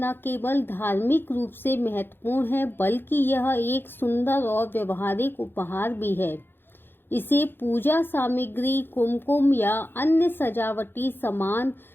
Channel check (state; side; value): late; right; 0.10 ms